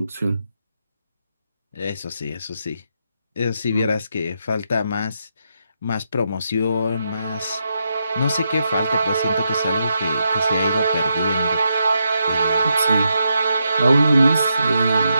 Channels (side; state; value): both; inverted; correlation -0.82